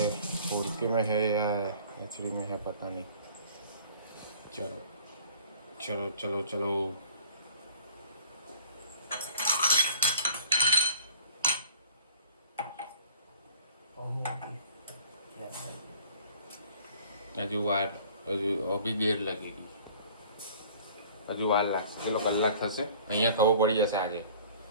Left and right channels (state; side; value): inverted; both; correlation -0.49